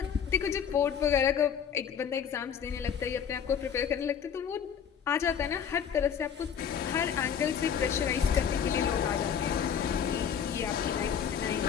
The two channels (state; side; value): quieter; right; 7.9 dB